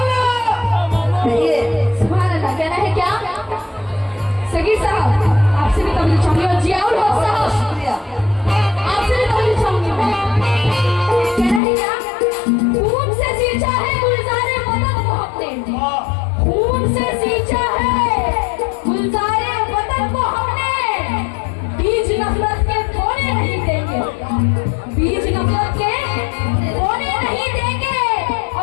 सुभान अल्लाह कहना है क्या सगीर साहब आपसे भी तबलीग चाहूंगी और जियाउल हक साहब आपसे भी तबलीग चाहूंगी मैं कहना है क्या खून से सींचा है गुलजारे वतन को हमने खून से सींचा है गुलजारे वतन को हमने बीज नफरत के बोने नहीं देंगे बीज नफरत के बोने नहीं देंगे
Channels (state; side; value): drops out; right; at 11.6 s